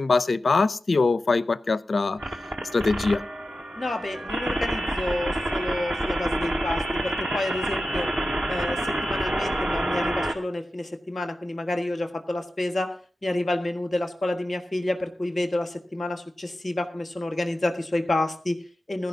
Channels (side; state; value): both; normal; correlation 0.93